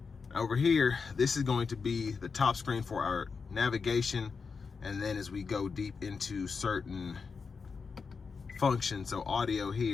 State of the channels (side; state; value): right; quieter; 5.2 dB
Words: Over here, this is going to be the top screen for our navigation, and then as we go deep into certain functions, so audio